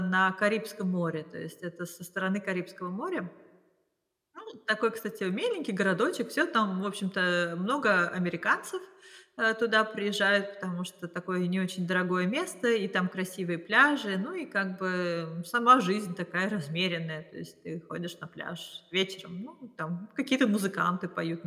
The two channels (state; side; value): identical; both; correlation 1.00